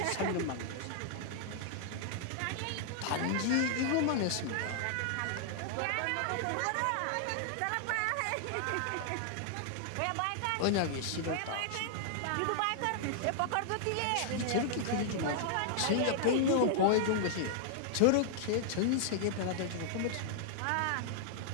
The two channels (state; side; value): different; both; correlation -0.01